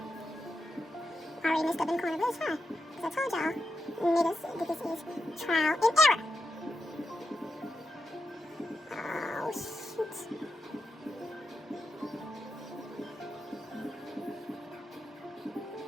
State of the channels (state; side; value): normal; both; correlation 0.86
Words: I already messed up in the corner, but it's fine. Because I told y'all, niggas, that this is trial and error. Oh, shoot.